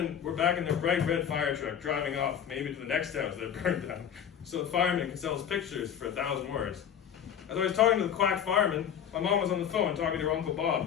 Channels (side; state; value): right; quieter; 8.8 dB